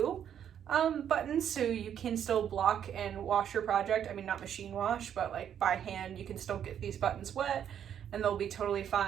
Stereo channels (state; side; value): quieter; left; 9.2 dB